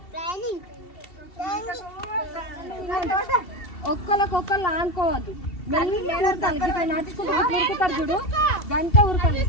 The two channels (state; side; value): late; right; 2.7 ms